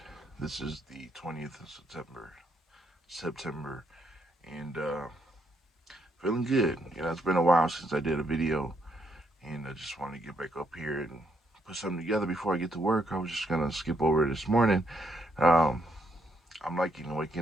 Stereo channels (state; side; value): normal; both; correlation 0.75